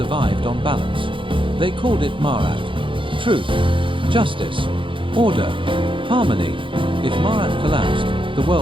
on balance. They called it Marat. Truth, justice, order, harmony. If Marat collapsed, the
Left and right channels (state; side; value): late; left; 0.25 ms